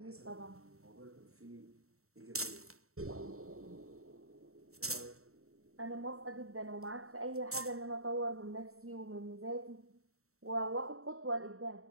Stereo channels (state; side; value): late; left; 0.63 ms